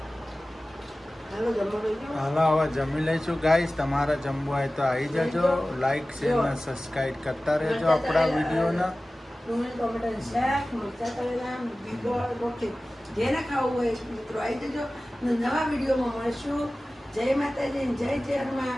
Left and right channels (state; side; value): normal; both; correlation 0.97